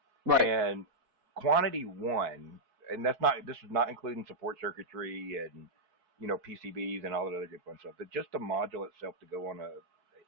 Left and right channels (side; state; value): left; late; 4.6 ms